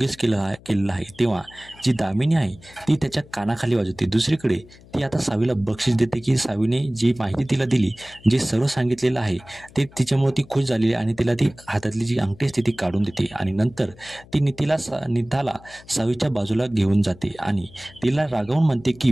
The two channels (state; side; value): noise; left; hum, 23 dB below the sound